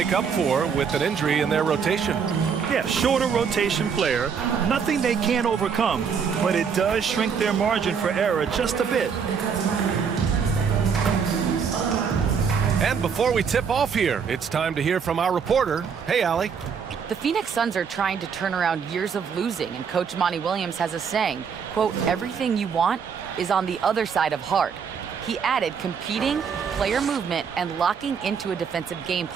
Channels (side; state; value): left; quieter; 6.5 dB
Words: up for with an injury in their rotation. Yeah, shorter rotation player, nothing they can't overcome, but it does shrink their margin for error just a bit. And before we tip off here, it's time to hear from our reporter. Hey, Allie. The Phoenix Suns are trying to turn around years of losing, and Coach Monty Williams has a saying, quote, everything you want is on the other side of hard. He added competing, player movement, and locking into a defensive game